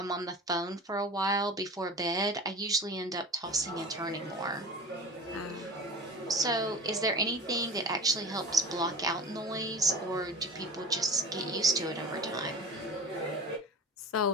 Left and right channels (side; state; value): both; normal; correlation 0.35